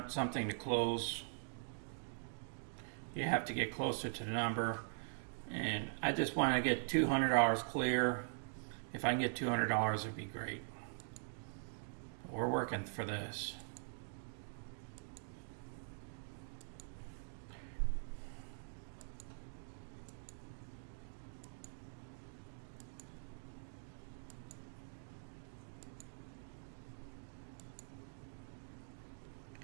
something to close, you have to get closer to the number. And I just want to get $200 clear. If I can get $200, it'd be great. We're working for this.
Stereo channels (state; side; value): silent; left; digital silence